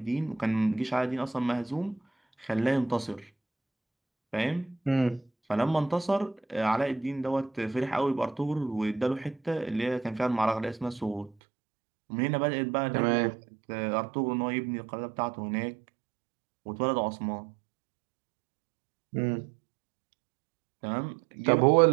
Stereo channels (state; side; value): drops out; left; at 11.3 s